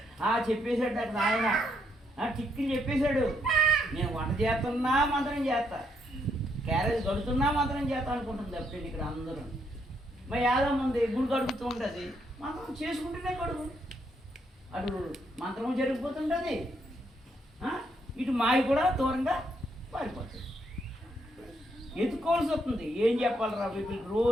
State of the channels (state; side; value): normal; both; correlation 0.75